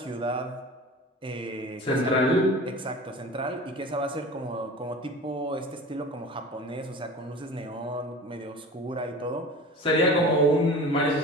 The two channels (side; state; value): both; normal; correlation 0.37